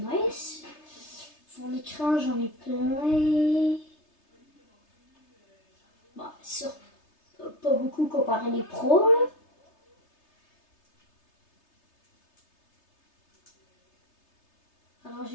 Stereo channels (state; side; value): late; right; 3.3 ms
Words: nice. Mon écran, j'en ai plein. Bon, sûr, pas beaucoup comparé les pros. Là. Alors,